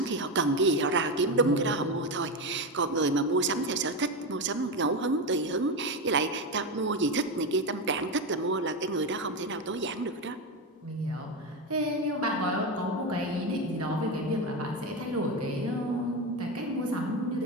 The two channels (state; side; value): normal; both; correlation 0.14